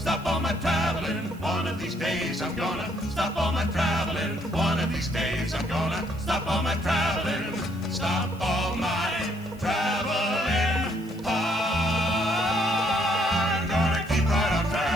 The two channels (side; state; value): right; noise; hiss, 25 dB below the sound